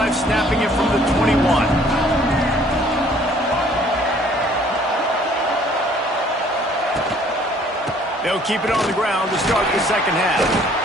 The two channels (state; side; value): normal; both; correlation 0.58